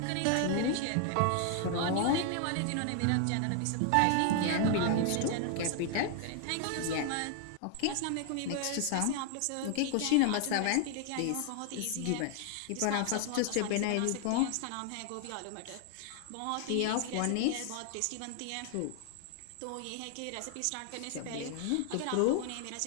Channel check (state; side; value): different; both; correlation 0.00